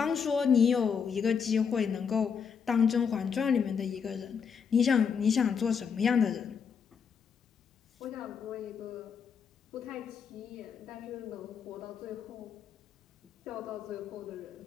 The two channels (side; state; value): right; quieter; 6.6 dB